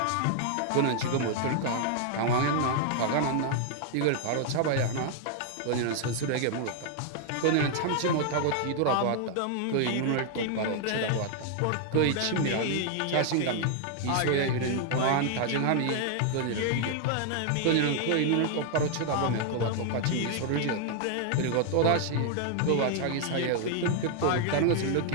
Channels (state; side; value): different; both; correlation 0.00